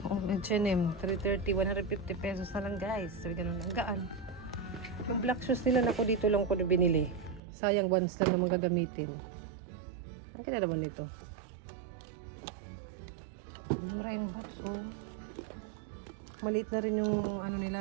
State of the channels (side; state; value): left; drops out; at 7.4 s